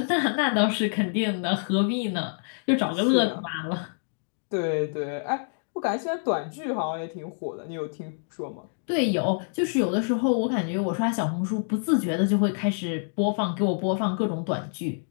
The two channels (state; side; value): silent; right; digital silence